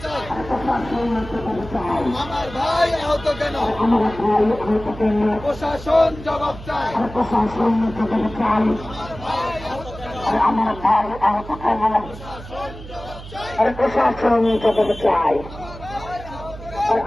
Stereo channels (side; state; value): right; noise; hum, 14 dB below the sound